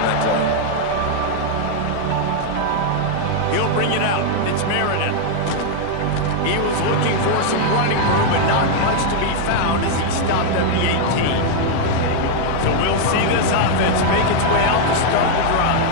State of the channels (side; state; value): both; different; correlation 0.00